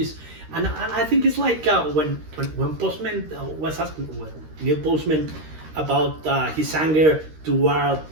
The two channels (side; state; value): left; late; 13 ms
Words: and I think it's like when Postman was asking Neil Postman about his anger toward